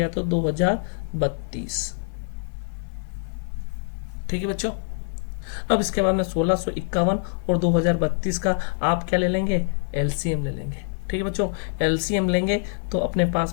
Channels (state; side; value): silent; right; 61 dB below the other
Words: तो 2032। ठीक है बच्चों, अब इसके बाद में 1651 और 2032 का आप क्या ले लेंगे, LCM ले लेंगे। ठीक है बच्चों, LCM लेंगे तो अपने